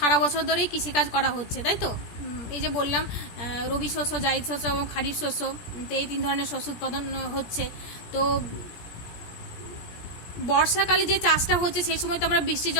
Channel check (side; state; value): right; late; 17 ms